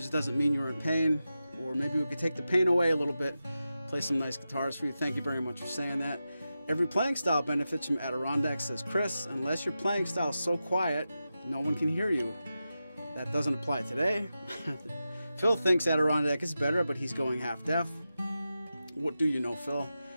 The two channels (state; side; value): inverted; both; correlation -0.91